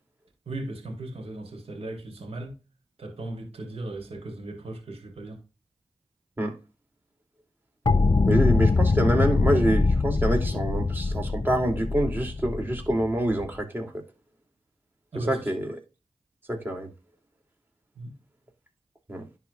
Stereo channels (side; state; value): both; normal; correlation 0.90